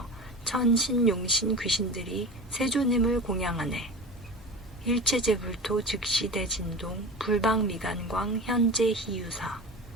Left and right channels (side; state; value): both; normal; correlation 0.31